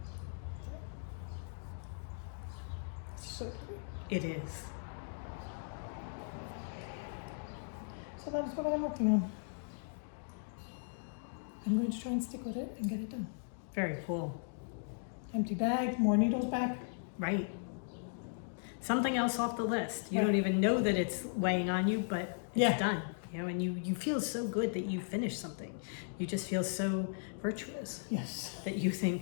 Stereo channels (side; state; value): right; silent; digital silence